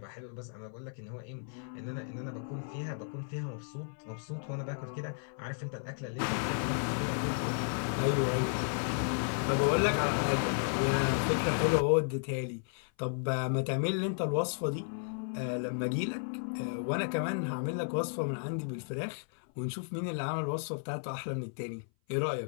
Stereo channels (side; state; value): right; silent; 55 dB below the other